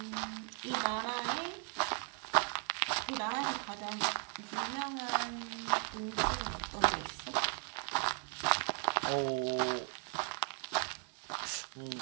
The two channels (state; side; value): quieter; left; 37.8 dB